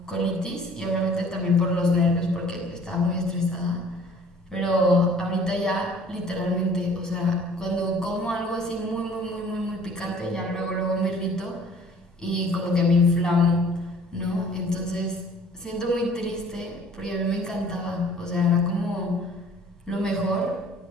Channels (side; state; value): both; normal; correlation 0.53